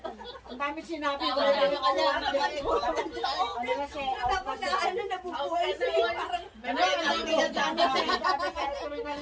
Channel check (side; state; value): both; identical; correlation 1.00